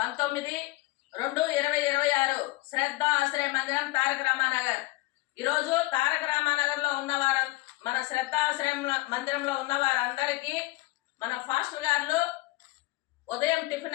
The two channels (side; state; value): right; quieter; 20.2 dB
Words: శ్రద్ధ ఆశ్రయ మందిరం తారక రామానగర్. ఈరోజు తారక రామానగర్ లో ఉన్నవారు, మన శ్రద్ధ ఆశ్రయం మందిరంలో ఉన్న వారందరికీ మన ఫాస్టర్ గారు ఉదయం